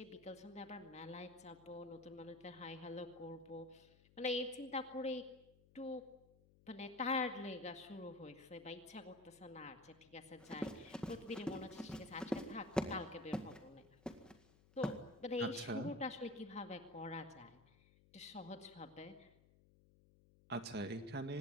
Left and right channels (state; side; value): noise; left; hum, 25 dB below the sound